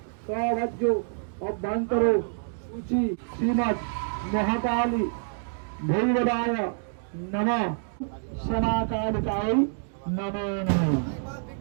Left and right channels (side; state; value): left; silent; digital silence